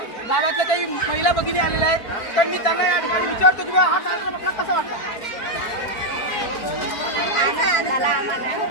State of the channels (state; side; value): late; right; 4.5 ms